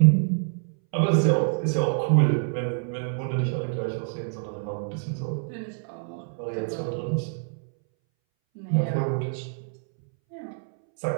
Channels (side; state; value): left; silent; 61 dB below the other